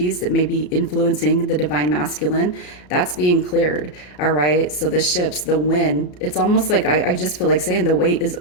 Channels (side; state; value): right; late; 34 ms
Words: that may be influencing the divine masculine, that's being cleared. All right. So the ships, the wind, it's almost like I just feel like saying the wait is